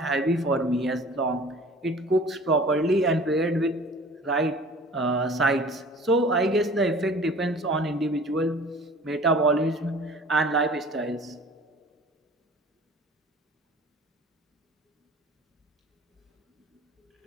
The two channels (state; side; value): normal; both; correlation 0.46